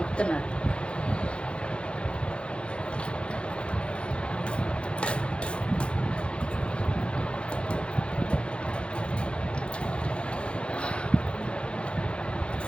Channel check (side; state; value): right; late; 0.057 ms